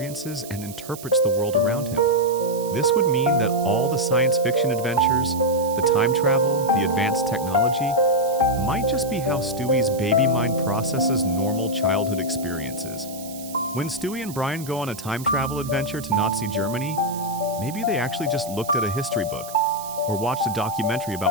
and interprets the world around him. This would mean that all the science fiction adventures, the time travel, the advanced technology, might just be how Stewie's baby mind processes normal childhood experiences. When Stewie and Brian go on a time travel adventure to Nazi Germany, maybe they actually just looked at a history book or watched a documentary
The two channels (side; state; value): right; noise; hiss, 15 dB below the sound